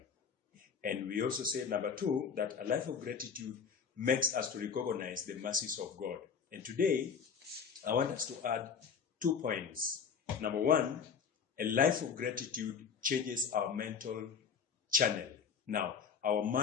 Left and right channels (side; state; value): right; quieter; 6.4 dB